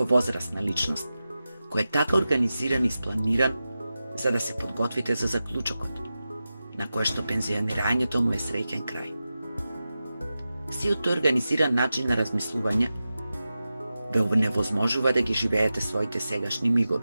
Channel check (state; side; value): inverted; both; correlation -0.93